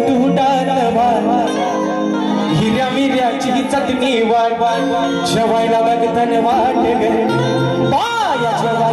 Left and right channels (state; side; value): identical; both; correlation 1.00